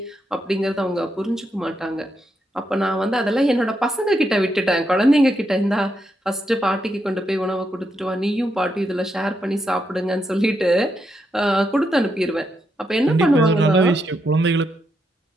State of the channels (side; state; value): both; normal; correlation 0.81